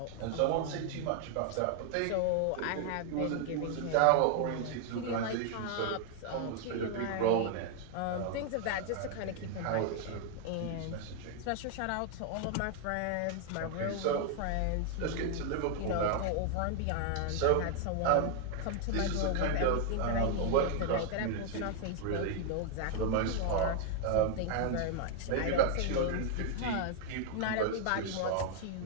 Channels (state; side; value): different; both; correlation 0.00